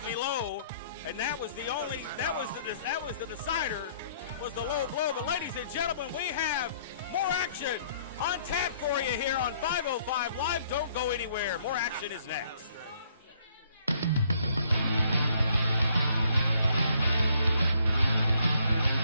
me low, and that was the decider, was the low blow. But ladies and gentlemen, we have more action on tap for you here on 505 Live. Don't go anywhere. More action is next.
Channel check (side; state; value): both; inverted; correlation -0.65